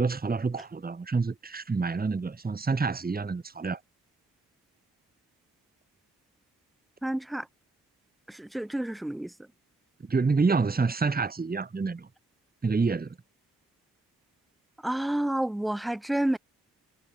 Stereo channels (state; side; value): quieter; left; 3.2 dB